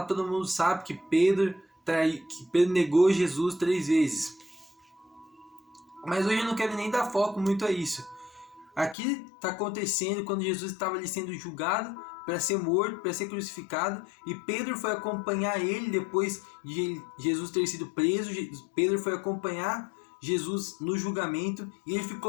todo mundo sabe que Pedro negou Jesus 3 vezes. Mas hoje eu não quero nem dar foco muito a isso. Aqui está acontecendo quando Jesus estava ali sendo julgado para ser morto, para ser crucificado, e Pedro foi acompanhar ele depois de Jesus ter sido preso. Pedro foi acompanhar Jesus no julgamento e ele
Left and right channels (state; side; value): drops out; right; at 9.0 s